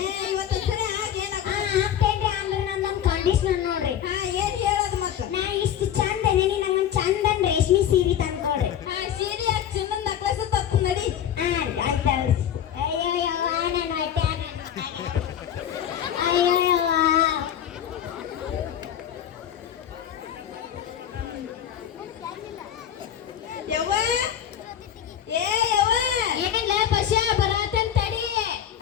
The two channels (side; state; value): right; quieter; 9.8 dB